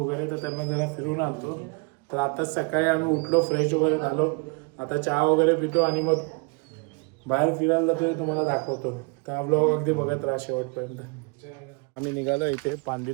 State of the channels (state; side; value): quieter; left; 32.2 dB